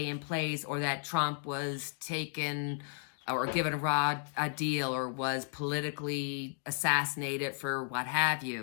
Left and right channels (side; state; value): right; silent; 55 dB below the other